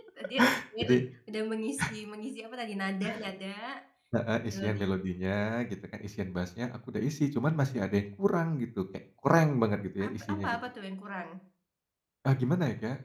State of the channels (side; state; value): both; identical; correlation 1.00